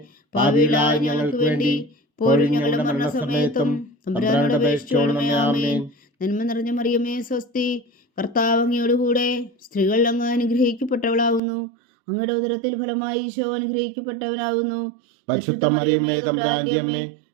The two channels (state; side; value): drops out; left; at 11.4 s